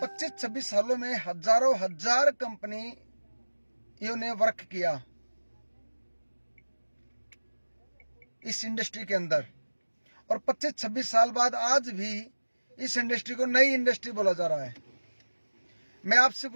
25-26 सालों में हजारों हजार कंपनियों ने वर्क किया इस इंडस्ट्री के अंदर, और 25-26 साल बाद आज भी इस इंडस्ट्री को नई इंडस्ट्री बोला जा रहा है। मैं आपसे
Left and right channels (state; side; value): inverted; both; correlation -1.00